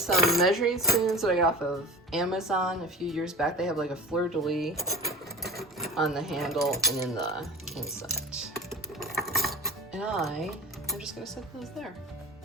measuring spoons that I got off of Amazon a few years back. They have like a fleur-de-lis on the handle and in the inside. And I'm just gonna set those there.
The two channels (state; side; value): normal; both; correlation 0.35